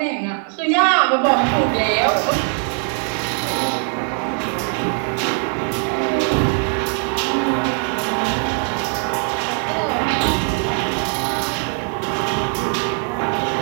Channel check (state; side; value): quieter; left; 39.4 dB